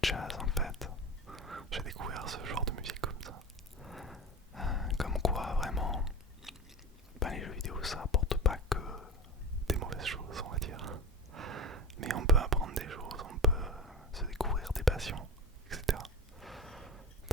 jazz en fait. J'ai découvert ce genre de musique comme ça. Comme quoi vraiment, ben, les jeux vidéo ça apporte pas que des mauvaises choses on va dire. Mais on peut apprendre des choses, on peut se découvrir des passions, etc.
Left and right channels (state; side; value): normal; both; correlation 0.29